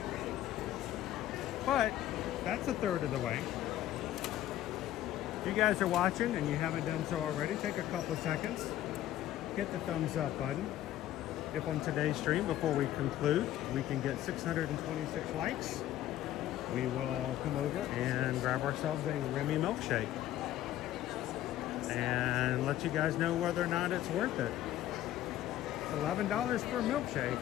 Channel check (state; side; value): quieter; right; 13.1 dB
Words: But that's a third of the way. If you guys are watching and you haven't done so already, take a couple of seconds. Hit the thumbs up button. If on today's stream, before we conclude, we can get 626 likes, we will come over and grab ourselves a Remy milkshake and let you guys know whether or not it's worth it. It's $11 for a milkshake,